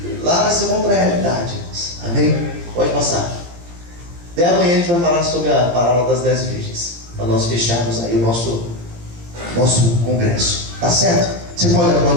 Lá vai ser uma outra realidade, irmãos. Amém? Pode passar. Até amanhã a gente vai falar sobre a parábola das 10 virgens, para nós fecharmos aí o nosso congresso. Tá certo? Você pode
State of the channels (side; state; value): left; late; 17 ms